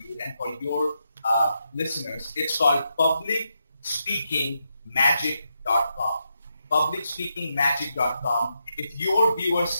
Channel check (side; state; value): both; inverted; correlation -0.83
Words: and for your listeners. It's called publicspeakingmagic.com. publicspeakingmagic.com. If your